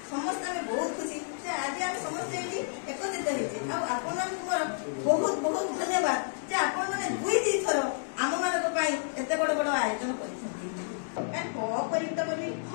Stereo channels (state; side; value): silent; right; digital silence